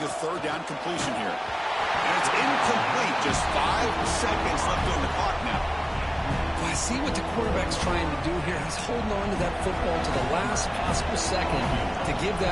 a 3rd down completion here. And it's incomplete. Just 5 seconds left on the clock now. Well, I see what the quarterback's trying to do here. He's holding on to that football to the last possible second to give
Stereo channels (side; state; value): both; identical; correlation 1.00